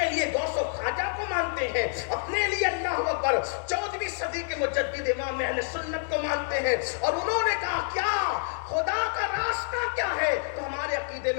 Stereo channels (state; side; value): silent; right; digital silence